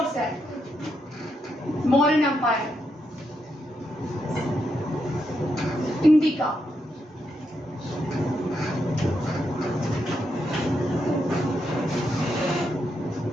है, मौर्य एम्पायर, इंडिका।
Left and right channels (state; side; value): normal; both; correlation 0.82